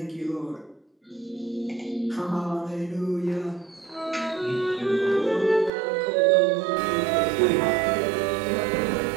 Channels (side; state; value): left; drops out; at 5.7 s